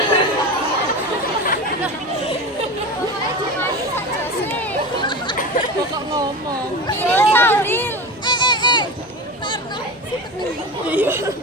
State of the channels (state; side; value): normal; both; correlation 0.28